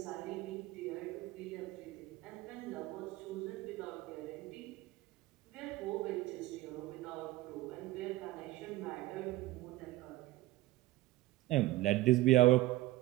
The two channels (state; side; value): quieter; left; 17.9 dB